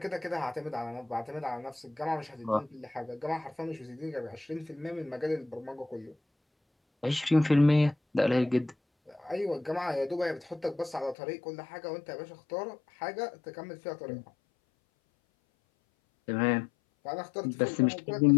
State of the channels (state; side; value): drops out; right; at 11.2 s